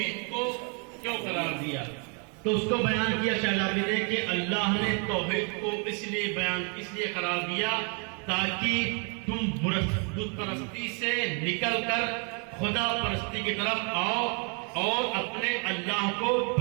کو کیوں قرار دیا؟ تو اس کو بیان کیا شہزادی نے کہ اللہ نے توحید کو اس لیے قرار دیا تاکہ تم بت پرستی سے نکل کر خدا پرستی کی طرف آؤ اور اپنے اللہ کو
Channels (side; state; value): left; quieter; 36.6 dB